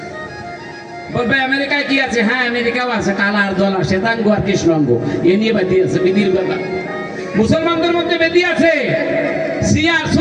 বলবে আমেরিকায় কি আছে? হ্যাঁ আমেরিকাও আছে, কালা আর দল, শ্বেতাঙ্গ আর কৃষ্ণাঙ্গ, এ নিয়ে বেদি আছে, বেদির ব্যাপার। মুসলমানদের মধ্যে বেদি আছে, শিয়া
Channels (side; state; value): both; identical; correlation 1.00